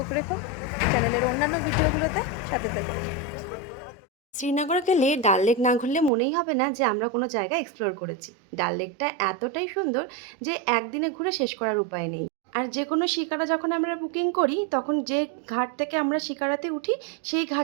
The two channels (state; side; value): drops out; left; at 6.1 s